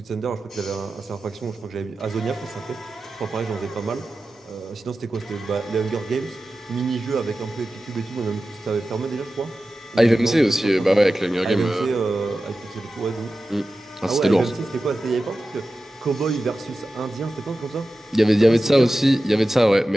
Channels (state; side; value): normal; both; correlation 0.94